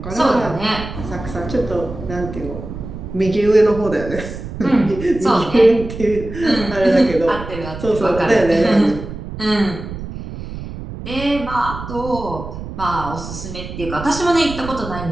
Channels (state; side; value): noise; right; rumble, 10 dB below the sound